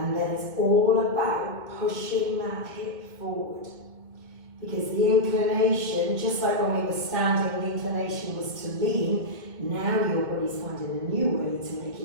then it's all about pushing that hip forward. Because the inclination, just like when we were standing, the inclination was to lean. Now your body's finding a new way to make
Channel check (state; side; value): late; left; 2.2 ms